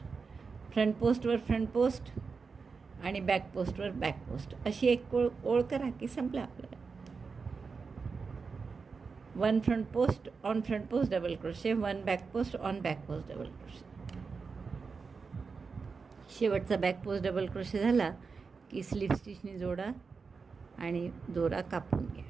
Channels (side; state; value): left; quieter; 4.9 dB